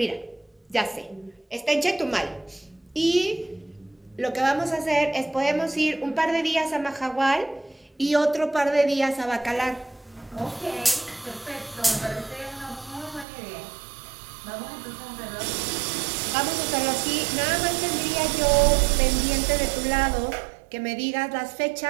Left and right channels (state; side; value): drops out; left; at 13.2 s